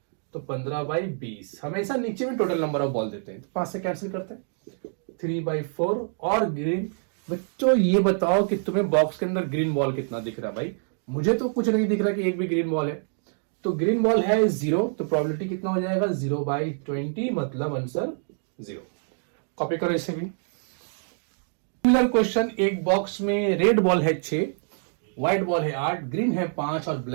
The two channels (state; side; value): silent; left; digital silence